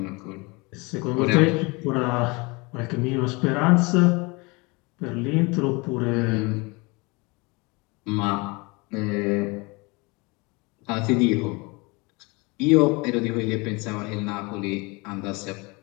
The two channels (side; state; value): right; quieter; 27.0 dB